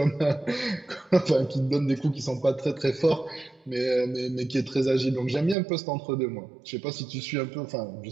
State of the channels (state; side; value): drops out; left; at 5.6 s